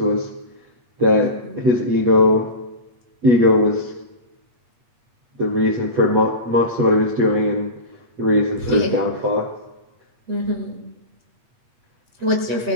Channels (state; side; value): late; left; 8.4 ms